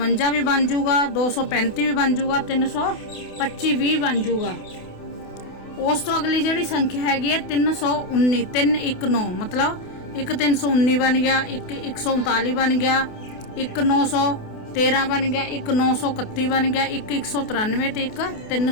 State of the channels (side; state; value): right; late; 28 ms